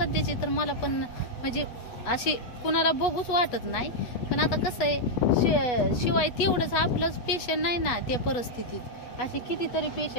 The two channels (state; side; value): late; right; 8.1 ms